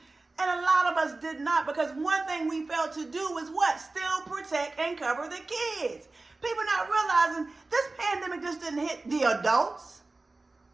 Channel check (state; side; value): quieter; left; 3.3 dB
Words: And a lot of us did not, because one thing we failed to do was what? Still protect and cover the kids. People not realizing this pandemic just didn't hit the adults.